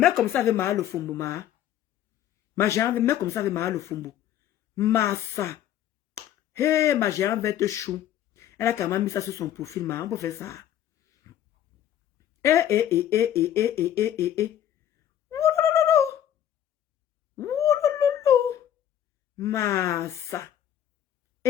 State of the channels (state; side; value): quieter; right; 11.0 dB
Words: comme ça avait mal au fombo, ma. Ma géante, mais comme ça avait mal au fombo. Massa. Hey, ma géante verte chou. Elle a quand même mis ça sur son profil, ma. On peut faire ça. Massa.